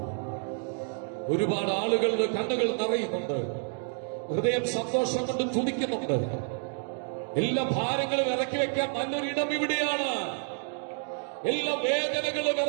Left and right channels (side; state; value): left; silent; 59 dB below the other